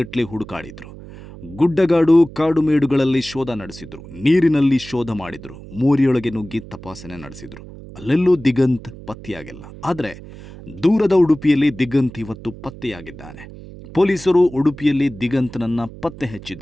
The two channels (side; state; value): right; noise; hum, 16 dB below the sound